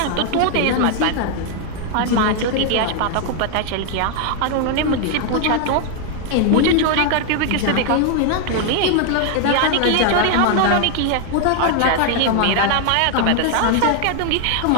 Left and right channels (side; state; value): both; different; correlation 0.00